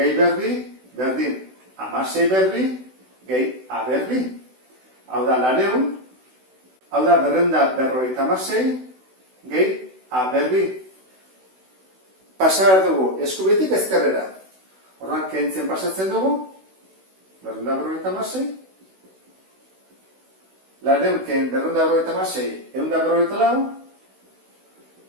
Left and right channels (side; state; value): left; late; 16 ms